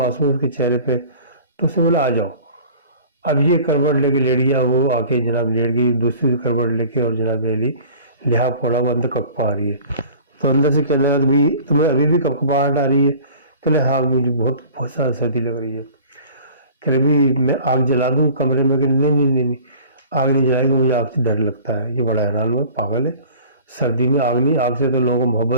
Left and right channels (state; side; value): inverted; both; correlation -0.46